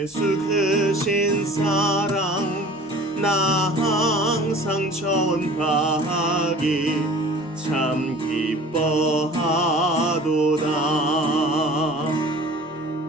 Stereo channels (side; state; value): both; normal; correlation 0.45